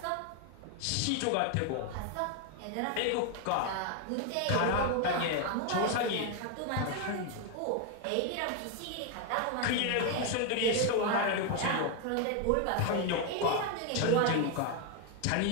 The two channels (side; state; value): both; different; correlation 0.01